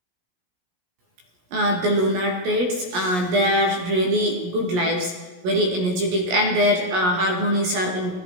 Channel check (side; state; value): left; late; 17 ms